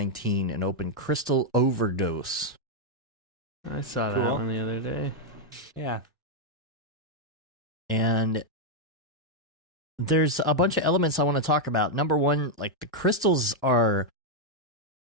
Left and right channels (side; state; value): both; normal; correlation 0.00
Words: and open Crystal Overdose. I saw that one the other day. Yeah. And there's a bunch of elements I want to talk about. Number one, like the crystals are